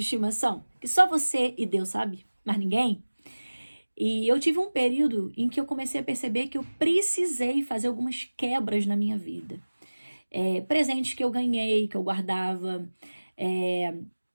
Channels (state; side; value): inverted; both; correlation -1.00